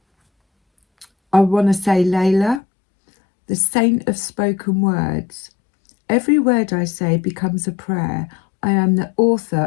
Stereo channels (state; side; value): drops out; right; at 2.6 s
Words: I want to say Layla, the saint of spoken words. Every word I say becomes a prayer. I am the